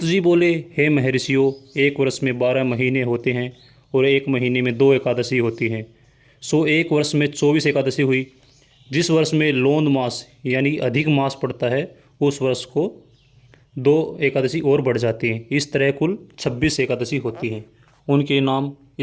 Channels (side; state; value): both; identical; correlation 1.00